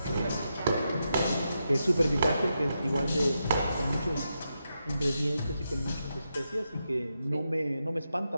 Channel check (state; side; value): inverted; both; correlation -0.85